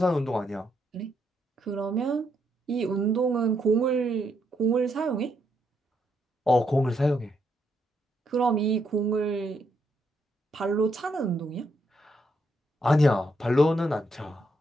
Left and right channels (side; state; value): both; normal; correlation 0.77